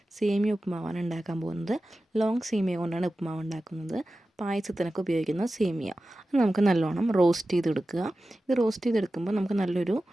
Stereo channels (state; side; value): normal; both; correlation 0.94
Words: സേമിയ ഉപ്പുമാവാണ് ഉണ്ടാക്കാൻ പോകുന്നത്. ലോങ് സേമിയ കൊണ്ടാണ് ഉപ്പുമാവ് ഉണ്ടാക്കുന്നത്. പായസത്തിനൊക്കെ ഉപയോഗിക്കുന്ന സേമിയ അത് നമുക്ക് നല്ലോണം റോസ്റ്റ് ചെയ്തെടുക്കുക. ഇത് റോസ്റ്റ് ചെയ്തെടുക്കുമ്പോൾ നമുക്ക് നല്ലൊരു